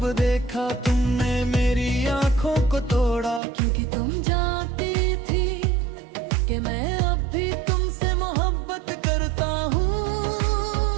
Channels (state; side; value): drops out; left; at 3.4 s